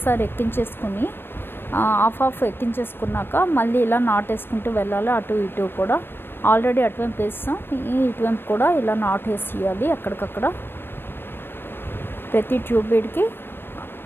ఎక్కించేసుకుని హాఫ్ ఎక్కించేసుకున్నాక మళ్ళీ ఇలా నాట్ వేసుకుంటూ వెళ్ళాలి. అటు ఇటు కూడా ఆల్రెడీ అటువైపు వేస్తాం, ఇటువైపు కూడా ఇలా నాట్ వేసేయాలి. అక్కడికక్కడ ప్రతి 2 బీడ్కి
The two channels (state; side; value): late; right; 0.10 ms